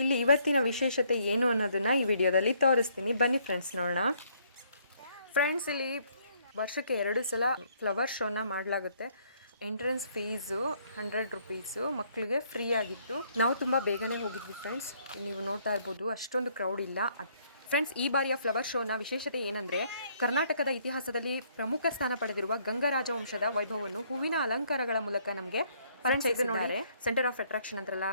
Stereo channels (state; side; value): inverted; both; correlation -0.67